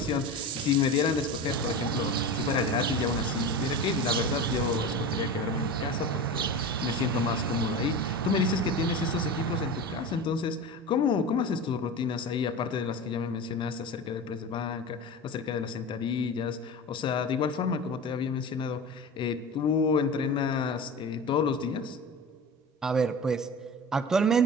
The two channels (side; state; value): both; normal; correlation 0.29